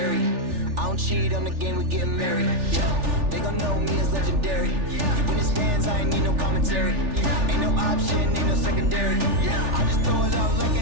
I don't cheat on the game, we getting married. Yeah. They gon' know me as legendary. You in the stands, I ain't need no commentary. Ain't no option, ain't no secondary. I just throw it up like a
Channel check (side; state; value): left; late; 3.4 ms